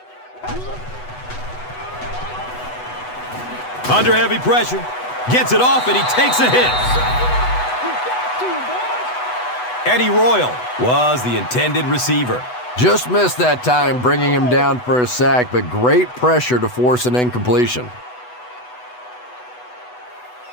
Under heavy pressure. Gets it off, and he takes a hit. Eddie Royal was the intended receiver. Just missed that time, bringing him down for a sack, but great pressure to force an incompletion.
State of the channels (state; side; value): late; right; 8.1 ms